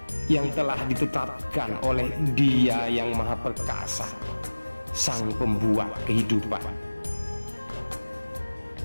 yang telah ditetapkan oleh Dia yang Maha Perkasa, Sang Pembuat kehidupan.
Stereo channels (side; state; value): both; inverted; correlation -1.00